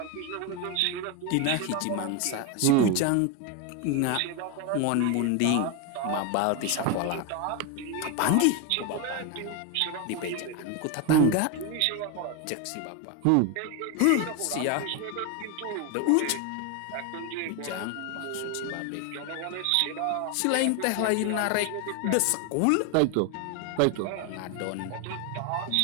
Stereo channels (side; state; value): both; different; correlation 0.01